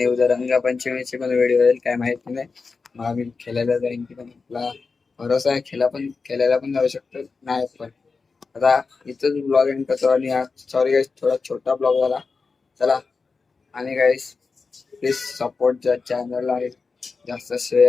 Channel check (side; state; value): right; quieter; 4.6 dB